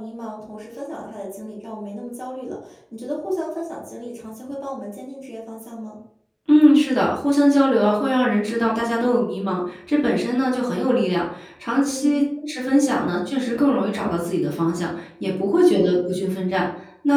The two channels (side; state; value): both; identical; correlation 1.00